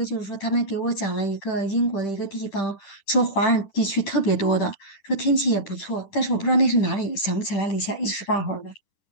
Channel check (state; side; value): late; right; 10 ms